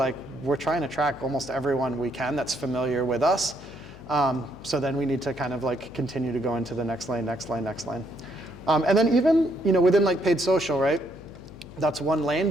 we're trying to track almost everyone we can that's familiar with us. So then we need to kind of like continue to go into the next lane. And then even within like paid social, right? That's one lane,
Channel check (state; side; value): noise; left; hum, 17 dB below the sound